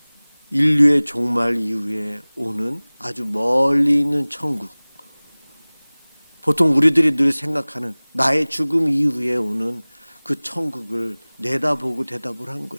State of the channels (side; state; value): both; inverted; correlation -1.00